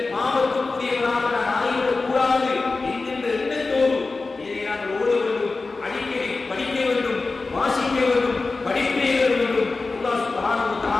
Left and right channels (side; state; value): right; quieter; 3.8 dB